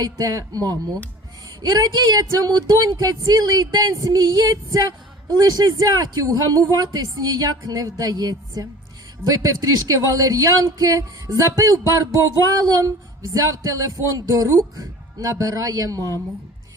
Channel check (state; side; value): normal; both; correlation 0.42